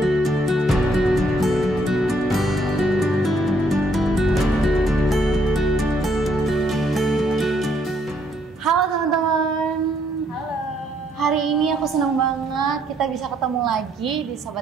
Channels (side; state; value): both; normal; correlation 0.70